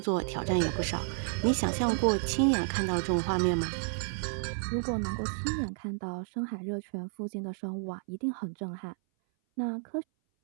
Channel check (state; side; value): silent; left; 57 dB below the other